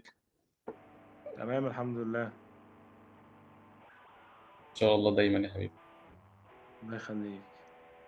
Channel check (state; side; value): identical; both; correlation 1.00